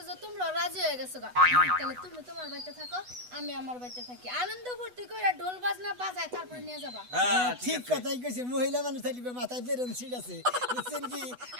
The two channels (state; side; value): late; left; 8.1 ms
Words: যে তোমরা রাজি হয়ে গেছো গা তাহলে তুমি তোমার বাড়িতে থাকো আমি আমার বাড়িতে থাকি আনন্দ ফুর্তি কইরা ঢোল বাজনা বাজায় তারপরে নিয়ে যাবা হ্যাঁ ঠিক কথাই কইছে মহিলা মানুষ থাকবে মাথায় বেরোন সিট আছে বুঝছেন কি